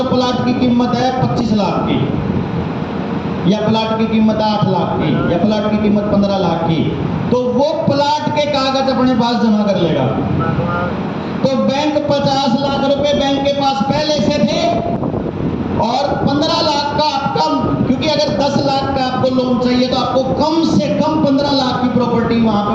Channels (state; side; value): identical; both; correlation 1.00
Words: प्लाट की कीमत है 25 लाख की, या प्लाट की कीमत 8 लाख की, या प्लाट की कीमत 15 लाख की, तो वो प्लाट के कागज अपने पास जमा कर लेगा। तो बैंक 50 लाख रुपए बैंक के पास पहले से थे, और 15 लाख का आपका, क्योंकि अगर 10 लाख का आपको लोन चाहिए तो आपको कम से कम 15 लाख की प्रॉपर्टी वहां पे